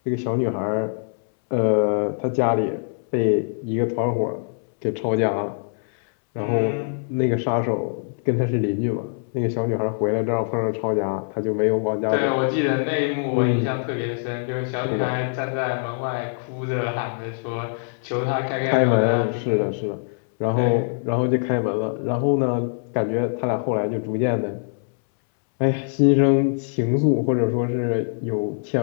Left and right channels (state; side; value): silent; right; 63 dB below the other